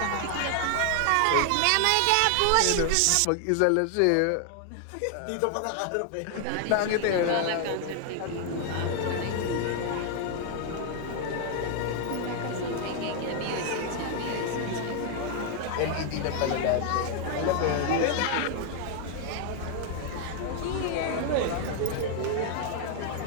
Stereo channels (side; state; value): both; different; correlation 0.00